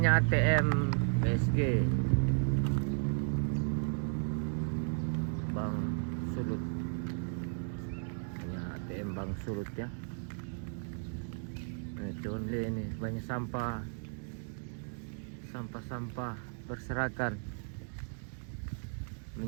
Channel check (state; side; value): silent; left; 55 dB below the other